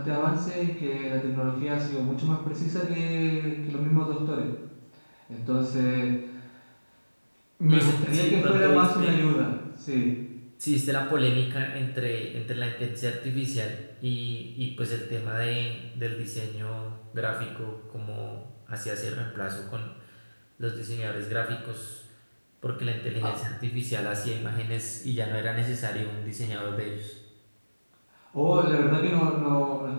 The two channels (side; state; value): both; inverted; correlation -1.00